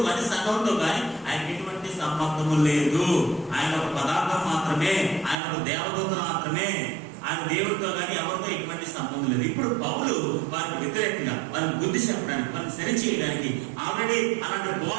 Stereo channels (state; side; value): drops out; left; at 5.4 s